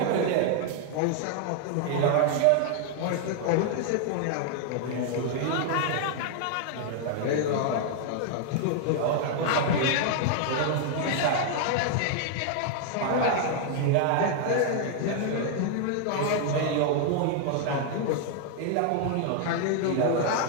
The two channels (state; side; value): different; both; correlation 0.00